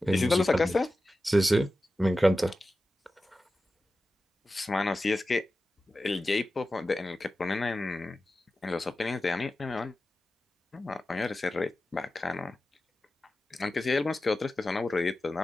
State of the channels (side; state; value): both; normal; correlation 0.94